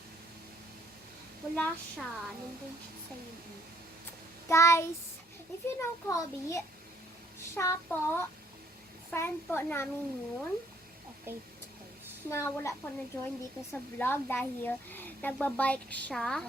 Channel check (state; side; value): normal; both; correlation 0.64